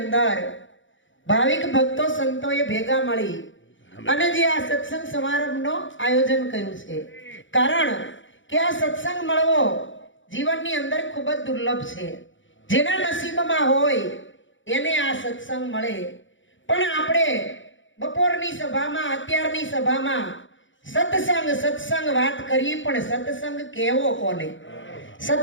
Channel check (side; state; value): right; late; 0.56 ms